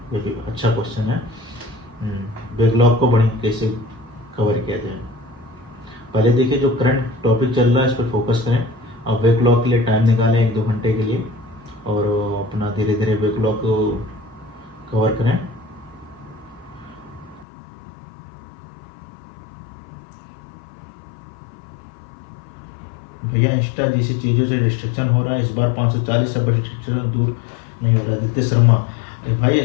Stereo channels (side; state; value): right; drops out; at 17.4 s